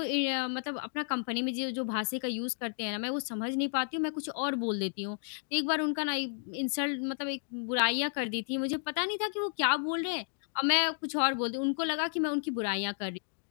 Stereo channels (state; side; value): silent; right; digital silence